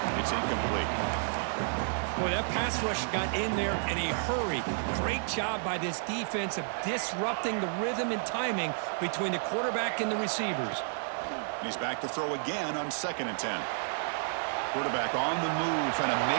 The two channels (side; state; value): left; silent; digital silence